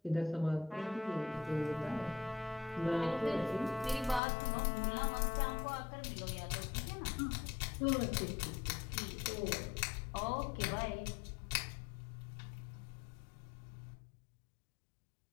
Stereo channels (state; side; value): drops out; right; at 4.2 s